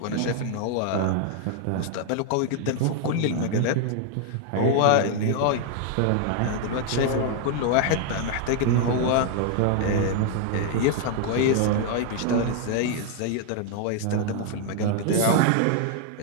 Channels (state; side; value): different; both; correlation 0.00